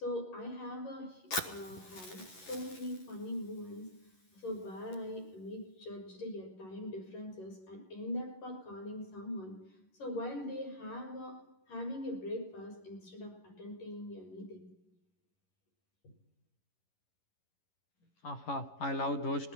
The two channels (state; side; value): late; right; 11 ms